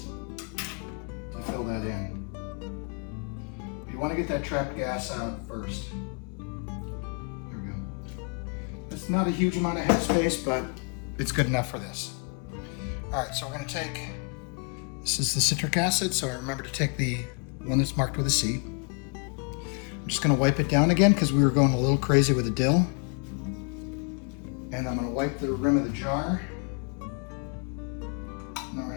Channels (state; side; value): quieter; right; 37.8 dB